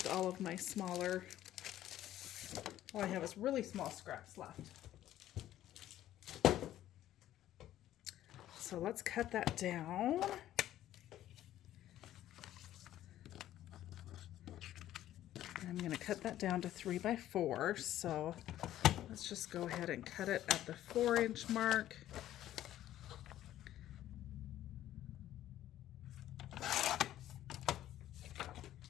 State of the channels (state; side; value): quieter; right; 12.9 dB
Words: all of my smaller. All I have is really small scraps left. So let's cut that down. I'm going to cut that down to 3x4. So let's just go ahead and cut it at the 4-inch mark.